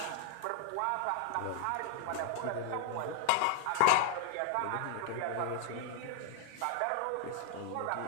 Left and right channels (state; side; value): different; both; correlation -0.01